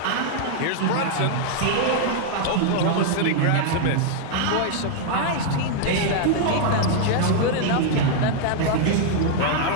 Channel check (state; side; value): different; both; correlation -0.01